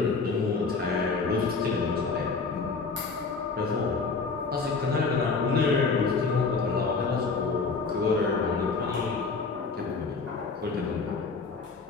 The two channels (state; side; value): quieter; right; 4.5 dB